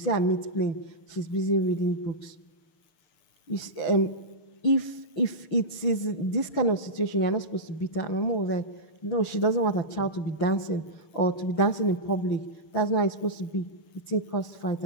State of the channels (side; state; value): right; late; 6.5 ms